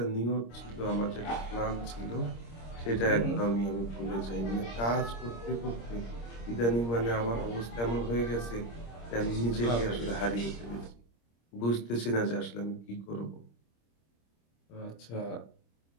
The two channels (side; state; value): right; late; 26 ms